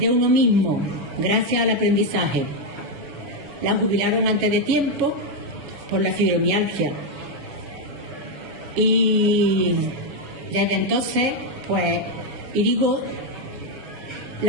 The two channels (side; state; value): left; late; 7.1 ms